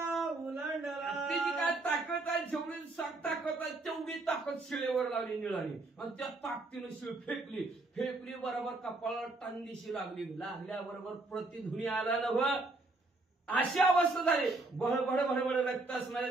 उलांडला. तिची काय ताकद ताकद आहे, जेवढी ताकद आहे तेवढी ताकद शिळेवर लावली निळाली आणि त्या ताकदीनं शिळ फेकली बरोबर कपाळाला टांगीशी लागल्याबरोबर प्रतिध्वनी आला नव. अशी अवस्था झाली. भडभड रक्त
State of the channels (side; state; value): left; quieter; 3.1 dB